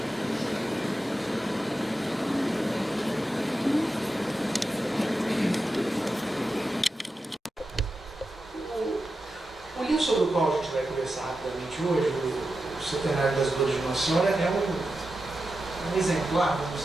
o livro sobre o qual a gente vai conversar rapidamente hoje, o Centenário das Dores de Nossa Senhora, é um exemplar, vamos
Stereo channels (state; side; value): normal; both; correlation 0.90